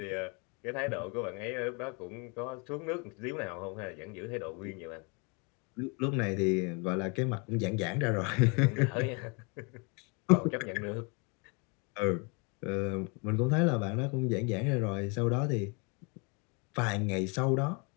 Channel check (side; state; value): right; quieter; 32.8 dB